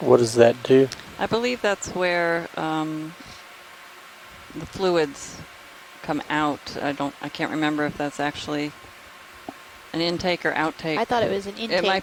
does that do? I believe that's where the fluids come out. I can't remember if that's actually an intake or outtake. I thought it was an intake. It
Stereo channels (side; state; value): both; identical; correlation 1.00